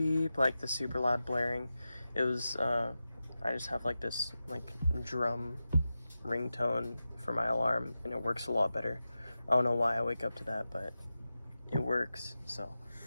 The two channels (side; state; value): both; inverted; correlation -0.93